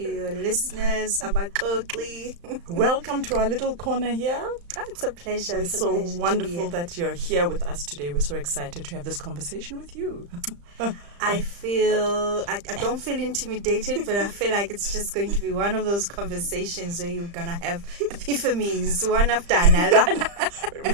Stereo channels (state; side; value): late; left; 35 ms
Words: listeners, Abaxoxi. Welcome to our little corner here. Oh, it's a pleasure. It's so wonderful that you're here with us today. We're so excited to have this conversation with you. I don't feel intimidated, but I feel like it's just going to be one of those conversations where you're going to have epiphanies, one after another.